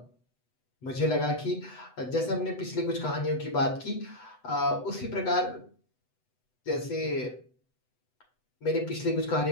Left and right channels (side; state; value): right; late; 8.0 ms